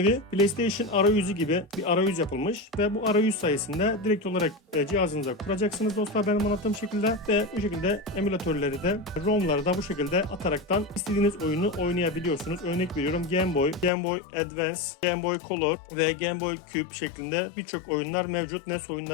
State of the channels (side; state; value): right; drops out; at 13.9 s